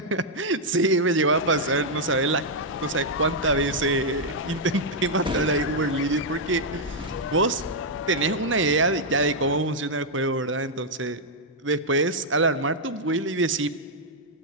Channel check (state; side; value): normal; both; correlation -0.04